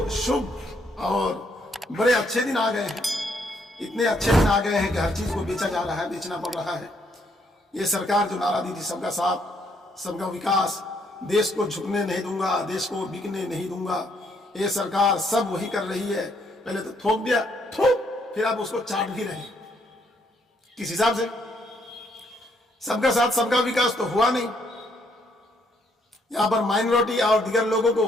शुभ और बड़े अच्छे दिन आ गए हैं, इतने अच्छे दिन आ गए हैं कि हर चीज़ को बेचा जा रहा है, बेचना पड़ रहा है। ये सरकार जो नारा दी थी सबका साथ सबका विकास, देश को झुकने नहीं दूंगा, देश को बिकने नहीं दूंगा, ये सरकार सब वही कर रही है। पहले तो थोक दिया, थोक, फिर आप उसको चाट भी रहे हैं। किस हिसाब से? सबका साथ सबका विकास तो हुआ नहीं। यहां पर माइनॉरिटी और दीगर लोगों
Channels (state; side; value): normal; both; correlation 0.71